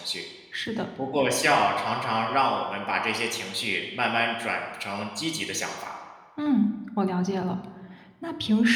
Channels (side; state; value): both; identical; correlation 1.00